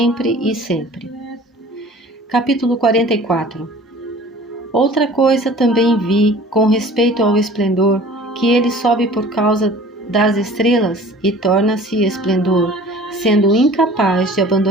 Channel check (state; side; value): normal; both; correlation 0.46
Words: e sempre. Capítulo 44. Outra coisa também vi com respeito ao esplendor, que ele sobe por causa das estrelas e torna-se esplendor, sendo incapaz de